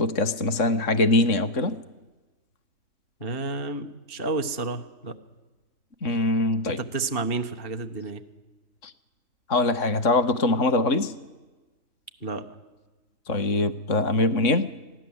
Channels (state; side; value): late; right; 3.6 ms